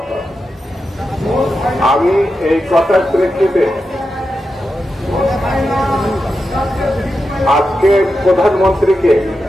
আমি এই কথার প্রেক্ষিতে আজকে প্রধানমন্ত্রীকে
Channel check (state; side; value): normal; both; correlation 0.89